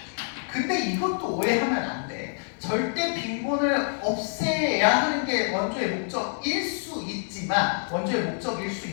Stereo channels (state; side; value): silent; right; digital silence